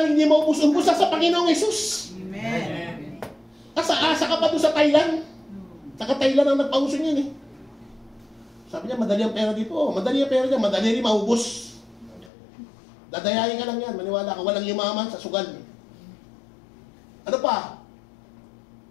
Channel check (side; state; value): right; drops out; at 12.3 s